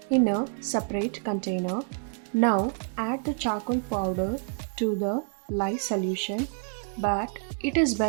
in a separate container. Now, add the charcoal powder to the lye solution, but it is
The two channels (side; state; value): left; silent; 58 dB below the other